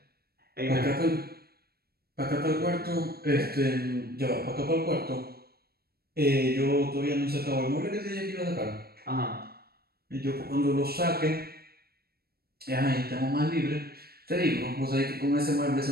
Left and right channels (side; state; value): left; late; 0.45 ms